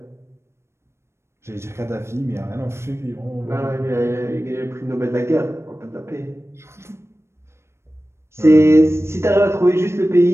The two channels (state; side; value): late; left; 0.13 ms